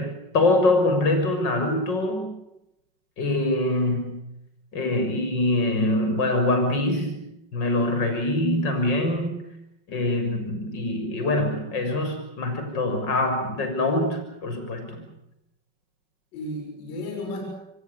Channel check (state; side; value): late; right; 5.5 ms